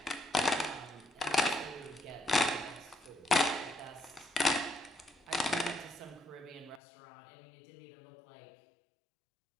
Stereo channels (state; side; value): drops out; right; at 6.8 s